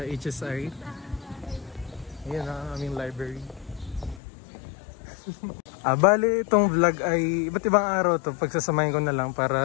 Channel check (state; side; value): drops out; right; at 4.2 s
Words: HSI. Ayan ang aming library. Bali itong vlog ay iba't ibang araw to. Pagsasamahin ko na lang